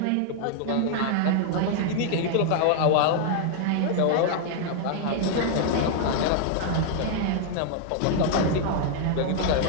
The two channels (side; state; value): both; different; correlation 0.00